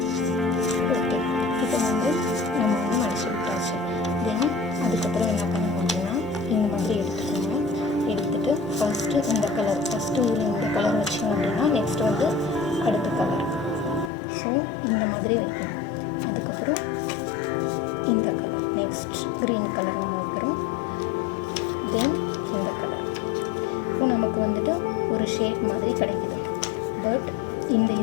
நம்ம மடிச்சு விட்டாச்சு. தென் அதுக்கப்புறம் என்ன பண்ணணும் அப்படின்னா இந்த மாதிரி எடுத்துக்கோங்க. எடுத்துகிட்டு ஃபஸ்ட்டு இந்த கலர் வச்சிங்க அப்படின்னா நெக்ஸ்ட் அடுத்த கலர். ஸோ இந்த மாதிரி வைக்கணும். அதுக்கப்புறம் இந்த கலர், நெக்ஸ்ட் க்ரீன் கலர் நம்ம வைக்கிறோம். தென் இந்த கலர். இப்போ நமக்கு ஒரு ஷேப் மாதிரி கிடைக்குது. பட் இந்த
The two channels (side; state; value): right; drops out; at 14.1 s